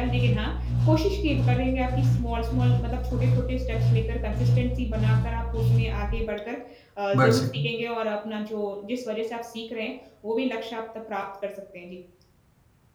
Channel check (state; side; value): identical; both; correlation 1.00